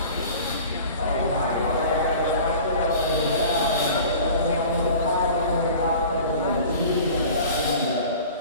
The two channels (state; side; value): inverted; both; correlation -0.42